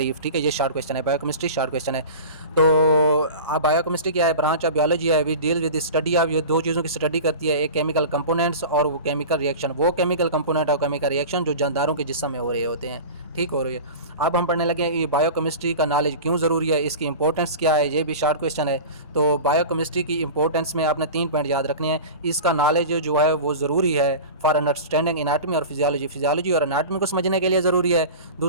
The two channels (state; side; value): inverted; both; correlation -0.33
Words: ठीक है, ये शॉर्ट क्वेश्चन है, बायोकेमिस्ट्री शॉर्ट क्वेश्चन है। तो अब बायोकेमिस्ट्री क्या है? ब्रांच ऑफ बियोलॉजी है, we deal with study of, ये दो चीज़ों की स्टडी करती है, एक केमिकल कंपोनेंट्स और वो केमिकल रिएक्शन, वो केमिकल कंपोनेंट और केमिकल रिएक्शन जो जानदारों के जिस्म में हो रहे होते हैं। ठीक हो रही है। अब हम पढ़ने लगे हैं ये बायोकेमिस्ट्री का नॉलेज क्यों ज़रूरी है, इसकी इंपॉर्टेंस क्या है, ये भी शॉर्ट क्वेश्चन है। तो बायोकेमिस्ट्री की इंपॉर्टेंस में आपने 3 पॉइंट याद रखने हैं। इसका नॉलेज जो है वो ज़रूरी है फॉर अंडरस्टैंडिंग एनाटमी और फिजियोलॉजी, फिजियोलॉजी और एनाटमी को समझने के लिए ज़रूरी है।